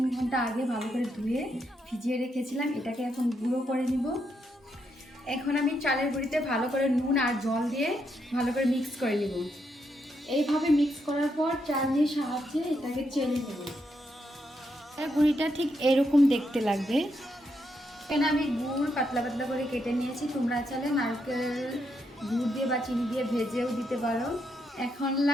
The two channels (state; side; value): normal; both; correlation 0.79